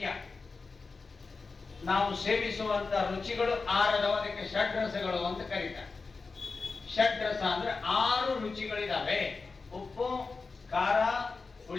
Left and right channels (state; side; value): quieter; right; 4.3 dB